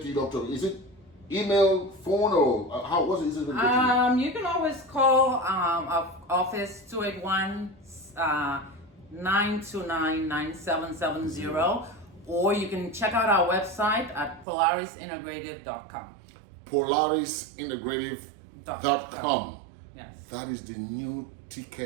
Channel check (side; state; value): left; drops out; at 14.5 s